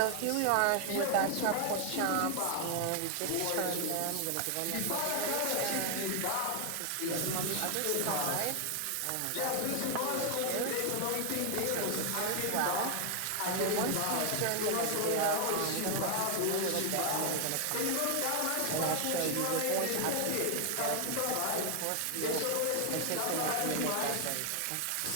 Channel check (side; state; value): both; different; correlation 0.00